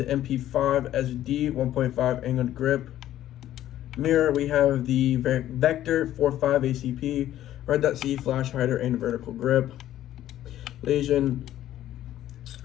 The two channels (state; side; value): quieter; right; 12.8 dB